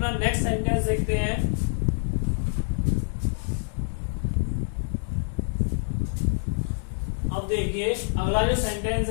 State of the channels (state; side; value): silent; right; digital silence